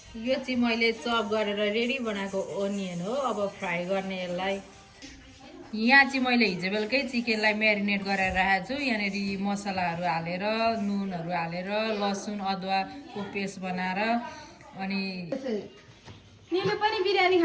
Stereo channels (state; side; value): identical; both; correlation 1.00